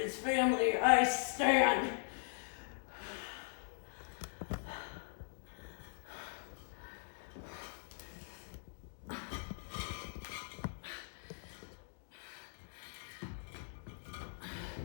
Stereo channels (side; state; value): right; silent; digital silence